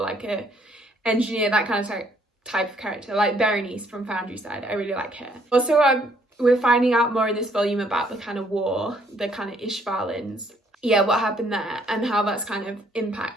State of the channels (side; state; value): both; normal; correlation 0.66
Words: a engineer, that kind of type of character, like Berenice from Foundry Side. I really like her. Also, we're finding out more in this volume about the kind of war, the kind of Ishvalans. Yeah, what happened there and how that's kind of